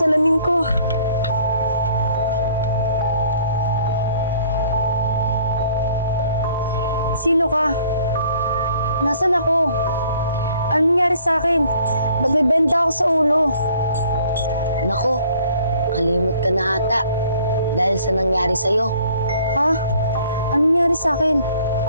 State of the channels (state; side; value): inverted; both; correlation -0.58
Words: ko. Sino ka? Nasaan ako? Ano nangyari sa akin? Ba't may benda ako sa ulo? Nako, kalimot ka na ata dahil sa nangyari sa'yo. Ha? Ano nangyari sa akin?